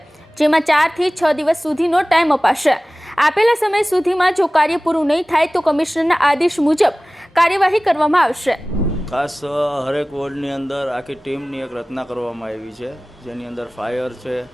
જેમાં 4 થી 6 દિવસ સુધીનો ટાઈમ અપાશે। આપેલા સમય સુધીમાં જો કાર્ય પૂરું નહીં થાય તો કમિશનરના આદેશ મુજબ કાર્યવાહી કરવામાં આવશે। ખાસ હરેક વોર્ડની અંદર આખી ટીમની એક રચના કરવામાં આવી છે, જેની અંદર ફાયર છે,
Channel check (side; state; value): both; normal; correlation 0.98